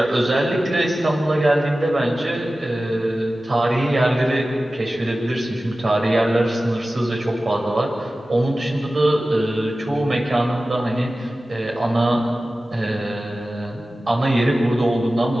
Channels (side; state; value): both; normal; correlation 0.95